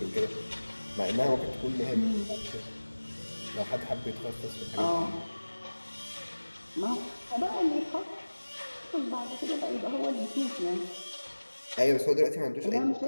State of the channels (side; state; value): both; inverted; correlation -1.00